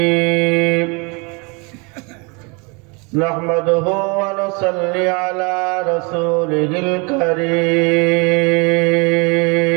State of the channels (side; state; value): left; quieter; 30.7 dB